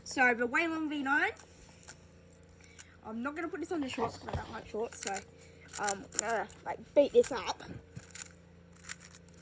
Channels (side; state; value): both; identical; correlation 1.00